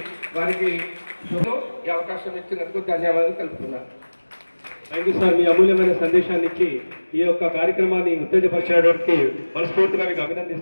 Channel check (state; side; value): inverted; both; correlation -1.00